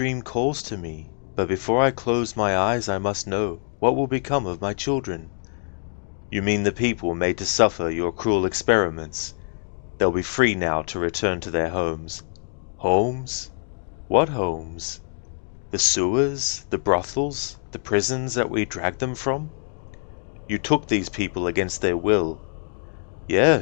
calls to me, but before I close my eyes I must know what will become of my children. You mean the people made to suffer your cruel experiments? They'll be free now to return to their homes. Homes? What homes? The sewers, the brothels, the prisons that we dragged them from? You took these people against their will.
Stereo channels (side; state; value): right; silent; digital silence